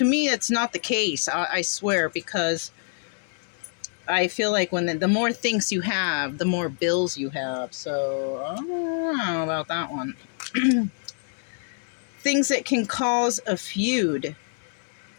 me, that's not the case, I swear, because I feel like when the more things you have, the more bills you have. So I don't know about that one. Things that can cause a feud.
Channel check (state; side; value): silent; right; digital silence